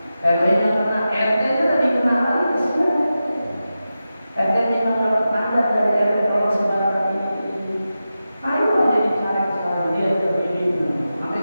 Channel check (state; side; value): inverted; both; correlation -0.92